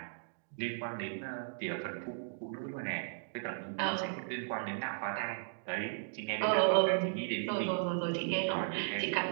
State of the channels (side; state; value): left; silent; digital silence